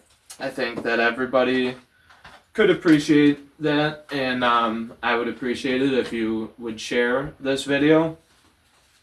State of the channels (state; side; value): identical; both; correlation 1.00